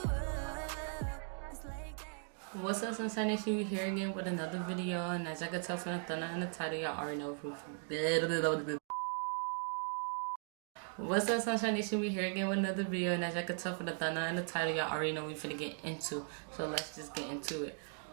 it's like that. What's up, Sunshine Nation? We here again with another video, and as I can tell from the thumbnail and the title, y'all already know who. What's up, Sunshine Nation? We here again with another video, and as I can tell from the thumbnail and the title, y'all already know we finna get into. So let's just get into it.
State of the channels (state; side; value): silent; left; 52 dB below the other